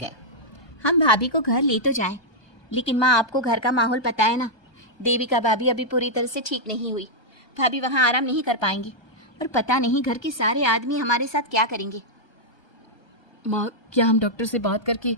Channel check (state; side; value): late; right; 1.2 ms